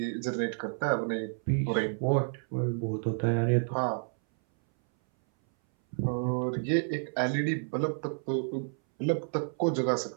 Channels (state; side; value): silent; left; 58 dB below the other